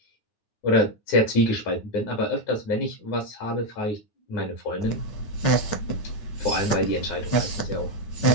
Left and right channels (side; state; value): right; late; 9.4 ms